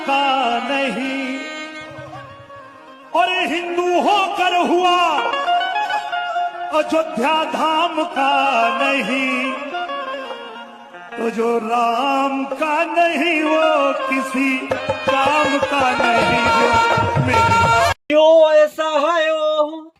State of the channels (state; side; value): identical; both; correlation 1.00